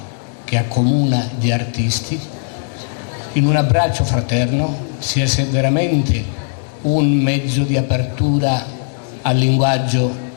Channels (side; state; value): right; silent; digital silence